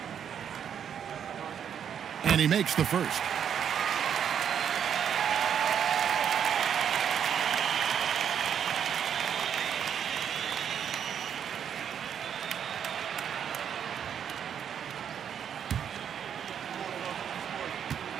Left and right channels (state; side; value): quieter; left; 8.4 dB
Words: And he makes the first.